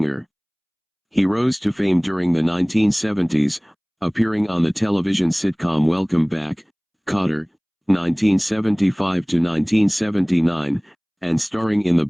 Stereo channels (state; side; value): identical; both; correlation 1.00